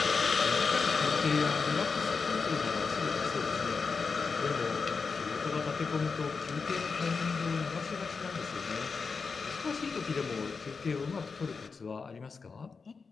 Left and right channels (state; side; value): quieter; right; 4.9 dB